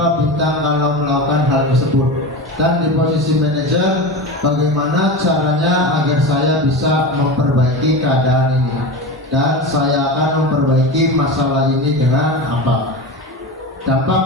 bintang kalau melakukan hal tersebut. Dan di posisi manajer, bagaimana caranya agar saya bisa memperbaiki keadaan ini, dan saya akan memperbaiki masalah ini dengan apa.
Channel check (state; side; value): normal; both; correlation 0.25